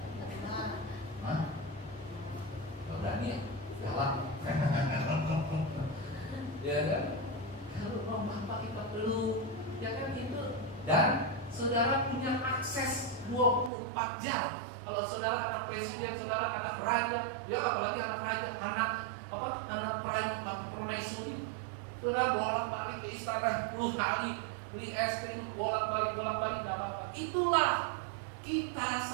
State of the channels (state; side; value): drops out; left; at 13.7 s